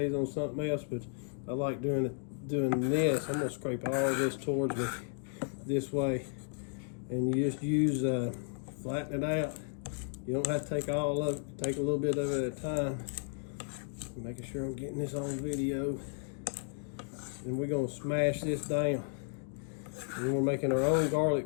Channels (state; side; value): silent; right; 55 dB below the other